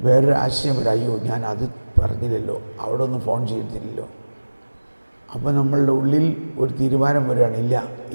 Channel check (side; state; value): both; inverted; correlation -1.00